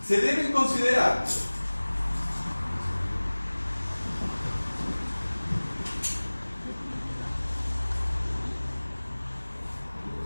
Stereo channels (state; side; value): inverted; both; correlation -1.00